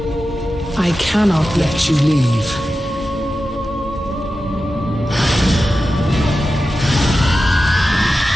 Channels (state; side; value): normal; both; correlation 0.92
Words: I cannot let you leave.